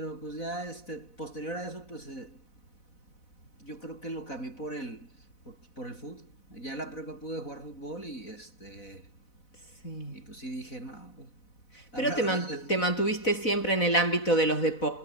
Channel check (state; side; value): late; right; 4.0 ms